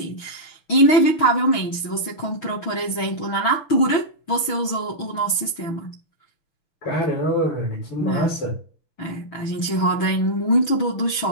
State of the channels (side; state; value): right; late; 6.2 ms